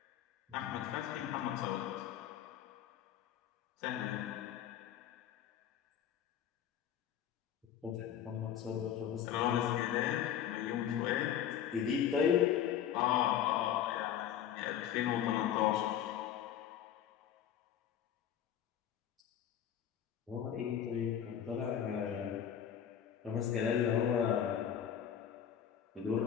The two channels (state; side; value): quieter; right; 9.7 dB